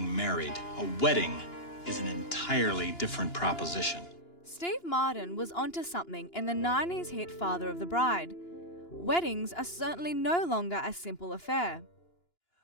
married. A wedding is an entirely different proposition. Steve Martin was onto something in the 90s hit Father of the Bride. Weddings are certainly no longer a simple affair.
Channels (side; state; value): right; late; 2.9 ms